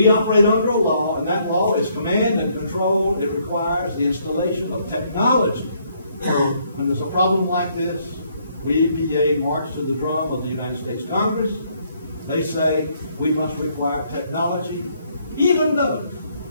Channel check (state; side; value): inverted; both; correlation -0.69